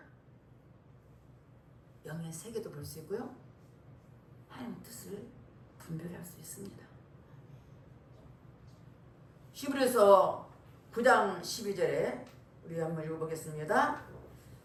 영의 세계도 볼 수 있고요. 하나님의 뜻을 분별할 수 있습니다. 히브리서 9장 12절에 우리 한번 읽어보겠습니다.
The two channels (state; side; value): identical; both; correlation 1.00